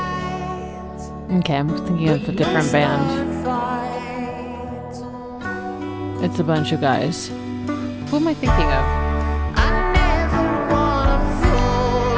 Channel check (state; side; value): identical; both; correlation 1.00